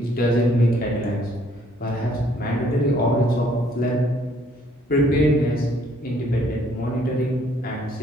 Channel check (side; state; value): both; normal; correlation 0.64